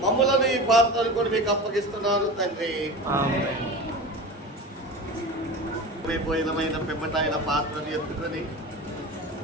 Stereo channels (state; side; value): normal; both; correlation 0.30